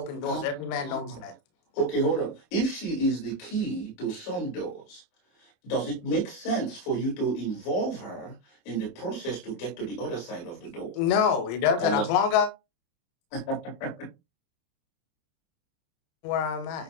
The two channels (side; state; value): right; late; 26 ms